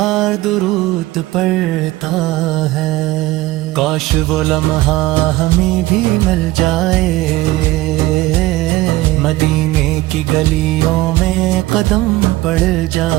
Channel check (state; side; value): quieter; left; 17.9 dB